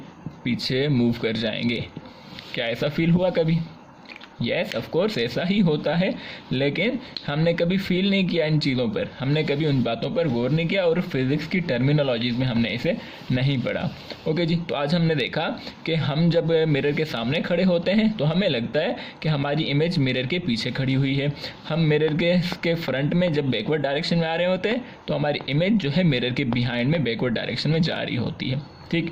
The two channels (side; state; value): both; identical; correlation 1.00